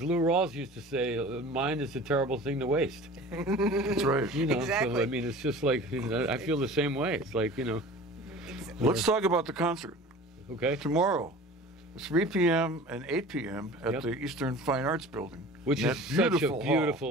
Lou Rawls used to say, mind is a terrible thing to waste. That's right. Exactly. So I mean, it's just like I feel the same way. It's like Let's talk about the concert okay, tomorrow. 3 p.m. and 8 p.m. at Yep. the Eastern Fine Arts Building. which That is such a beautiful hall.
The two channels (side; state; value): both; normal; correlation 0.40